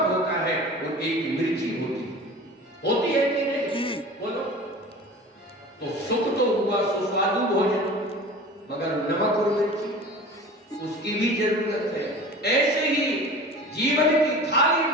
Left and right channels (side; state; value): both; normal; correlation 0.38